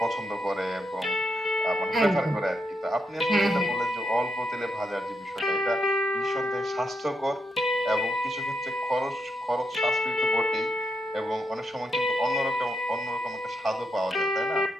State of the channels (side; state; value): both; normal; correlation 0.82